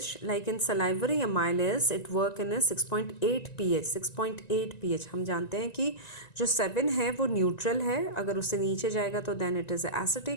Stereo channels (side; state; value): right; late; 1.9 ms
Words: like in salivary amylase it work in a 6.8 pH. 6.8 pH हम जानते हैं कि जो 7 है वो neutral है, अगर उससे नीचे जाएगा तो देन इट इज़